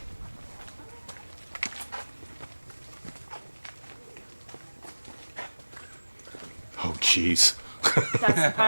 Oh, jeez. That's the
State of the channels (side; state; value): both; inverted; correlation -1.00